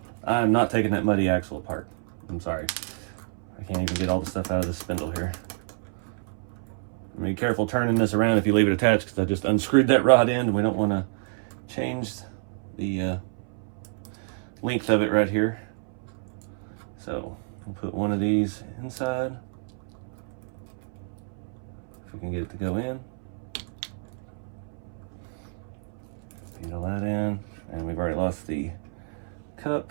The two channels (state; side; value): silent; left; 59 dB below the other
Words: not taking that muddy axle apart. I'm sorry. I can't even get all the stuff out of this spindle here. Be careful turning this around if you leave it attached, because I just unscrewed that rod end and we don't want to change the length of it right here. So we'll put one of these inside. If we can get it to go in. Needle that in, and we've already lost the